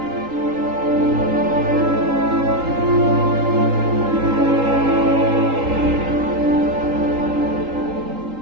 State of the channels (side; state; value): left; late; 3.8 ms